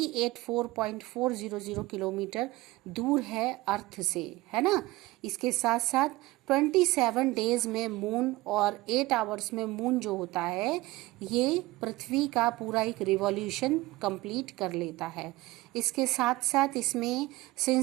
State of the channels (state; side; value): quieter; left; 19.2 dB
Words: किलोमीटर दूर है अर्थ से, है ना। इसके साथ साथ 27 डेज में मून और 8 आवर्स में मून जो होता है ये पृथ्वी का पूरा एक रिवॉल्यूशन कंप्लीट कर लेता है। इसके साथ साथ इसमें